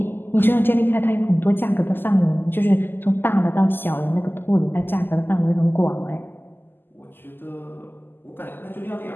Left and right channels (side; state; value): right; late; 0.096 ms